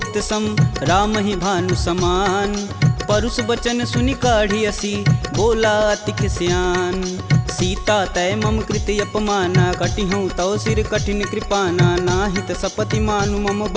सम राम ही भानु समान। परुष बचन सुनि काढ़ी असी बोला अति खिसियान। सीता तय मम कृति अपमाना कटिहूँ तव सिर कठिन कृपाना। नाहित सपति मानु मम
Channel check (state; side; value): identical; both; correlation 1.00